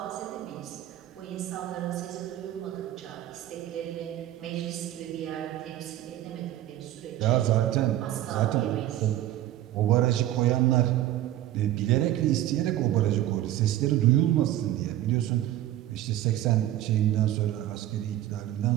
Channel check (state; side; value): quieter; left; 13.4 dB